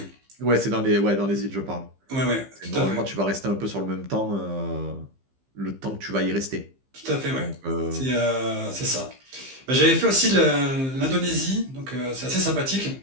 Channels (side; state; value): left; late; 15 ms